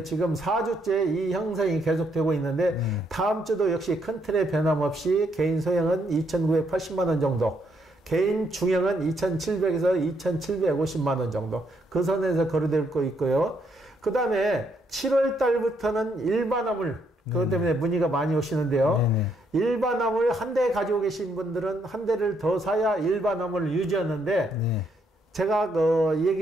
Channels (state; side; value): normal; both; correlation 0.74